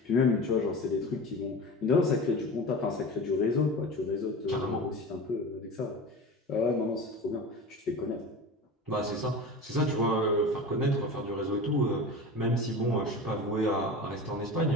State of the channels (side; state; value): both; normal; correlation 0.31